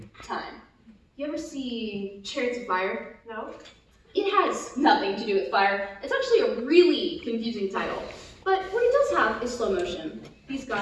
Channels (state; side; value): identical; both; correlation 1.00